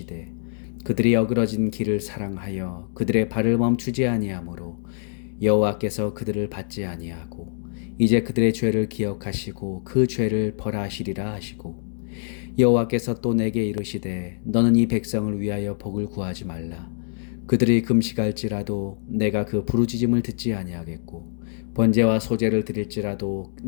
그들이 어그러진 길을 사랑하여 그들의 발을 멈추지 아니하므로 여호와께서 그들을 받지 아니하고 이제 그들의 죄를 기억하시고 그 죄를 벌하시리라 하시고 여호와께서 또 내게 이르시되 너는 이 백성을 위하여 복을 구하지 말라. 그들이 금식할지라도 내가 그 부르짖음을 듣지 아니하겠고 번제와 소제를 드릴지라도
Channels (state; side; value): silent; right; digital silence